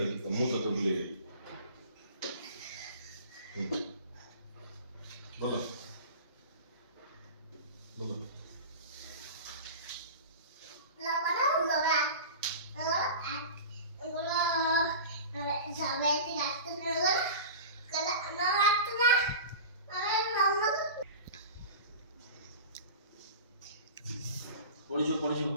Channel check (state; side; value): inverted; both; correlation -0.34